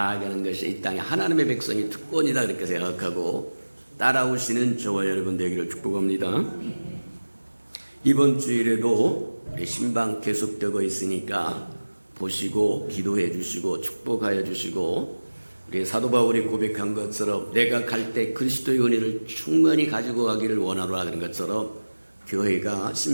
것이 이 땅에 하나님의 백성의 특권이다 그렇게 생각하고 따라오시는 저와 여러분 되기를 축복합니다. 이번 주일에도 우리 신방 계속되고 있으니까 보시고 기도해 주시고 축복하여 주시고, 우리 사도 바울이 고백한 것처럼 내가 갈 때 그리스도의 은혜를 충만히 가지고 가기를 원하노라 그런 것처럼 교회가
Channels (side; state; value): both; inverted; correlation -1.00